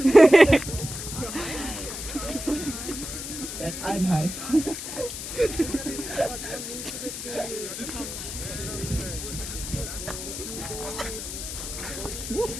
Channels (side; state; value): left; noise; hiss, 7 dB below the sound